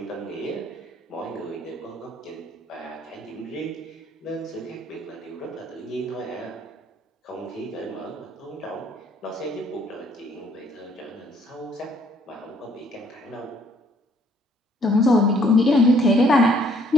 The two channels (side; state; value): both; normal; correlation 0.64